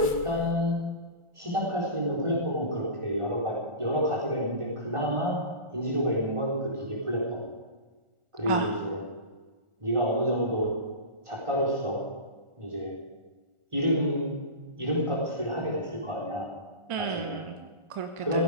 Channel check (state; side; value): late; left; 1.4 ms